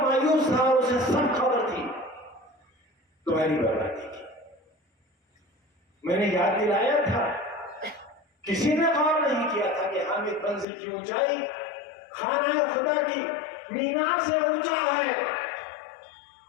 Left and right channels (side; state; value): right; drops out; at 10.7 s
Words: मायूस था, उसे सब खबर थी तुम्हारी बर्बादी की। मैंने याद दिलाया था, किसी ने गौर नहीं किया था कि हामिद मंजिल की ऊंचाई खाना खुदा की मीनार से ऊंचा है।